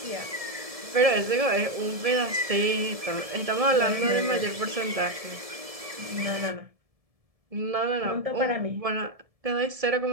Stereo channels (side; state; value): left; late; 1.7 ms